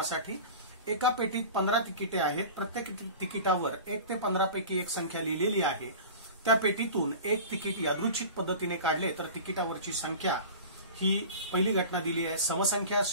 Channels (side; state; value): both; inverted; correlation -0.36